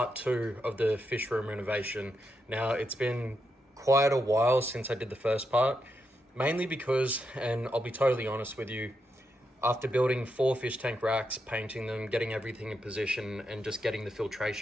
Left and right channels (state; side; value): normal; both; correlation 0.83